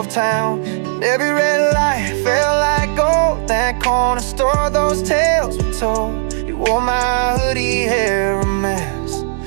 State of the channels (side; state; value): left; silent; digital silence